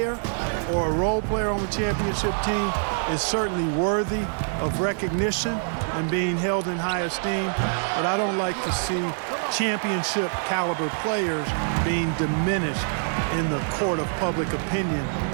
or a role player on the championship team is certainly worthy of recognition and being held in high esteem, but I don't like to see championship caliber players being diminished in the court of public opinion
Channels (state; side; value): silent; left; 62 dB below the other